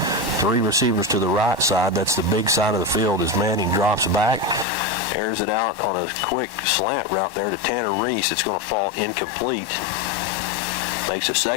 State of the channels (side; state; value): right; drops out; at 4.7 s